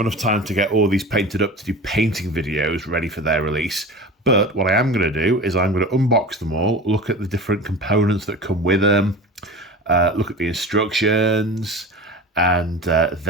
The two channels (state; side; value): normal; both; correlation 0.34